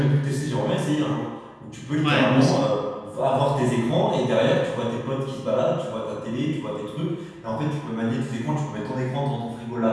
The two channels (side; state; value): both; identical; correlation 1.00